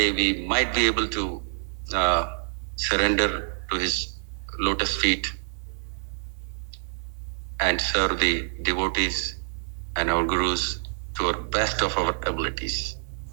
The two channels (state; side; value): silent; left; 57 dB below the other